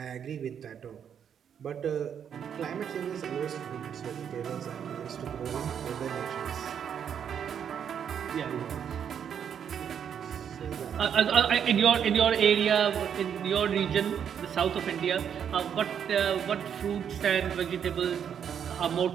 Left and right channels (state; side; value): quieter; left; 8.2 dB